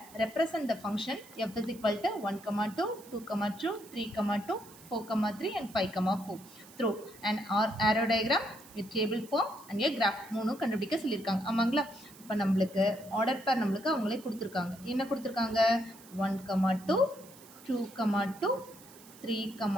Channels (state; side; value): noise; right; hiss, 21 dB below the sound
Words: represent the function f is equal to 1, 2, 2, 2, 3, 2, 4, 3 and 5, 4 through an arrow diagram with table form and a graph மூணும் கண்டுபிடிக்க சொல்லியிருக்காங்க. ஆமாங்களா? இப்போ நம்மளுக்கு ஆர்டர் பேர் நம்மளுக்கு அவங்களே கொடுத்துருக்காங்க. என்ன கொடுத்துருக்காங்க? 1, 2, 2, 2, 3,